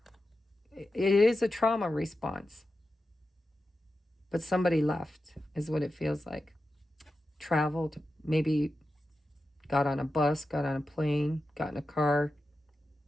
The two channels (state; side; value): normal; both; correlation 0.91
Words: it is a trauma response. But somebody left is what it feels like. Traveled, maybe got on a bus, got on a plane, got in a car.